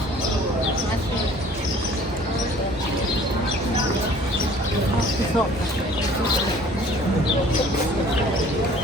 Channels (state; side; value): normal; both; correlation 0.52